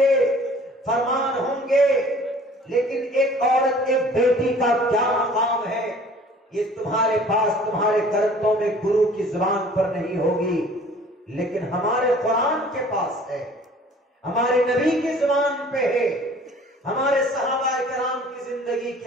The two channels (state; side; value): normal; both; correlation 0.51